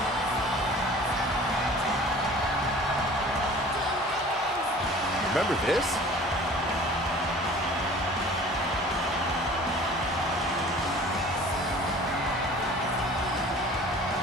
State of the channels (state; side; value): normal; both; correlation 0.46